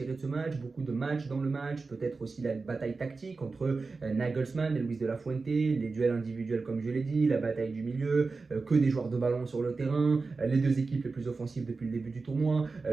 de ce match, beaucoup de matchs dans le match, peut-être aussi la bataille tactique entre Nagelsmann et Luis de la Fuente, les duels individuels comme je l'ai dit, la bataille du milieu, que des joueurs de ballon sur le terrain, les deux équipes les plus offensives depuis le début du tournoi,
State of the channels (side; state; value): left; quieter; 4.1 dB